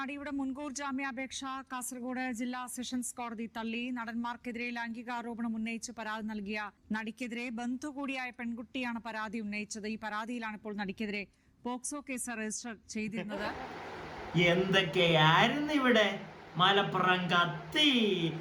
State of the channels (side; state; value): both; identical; correlation 1.00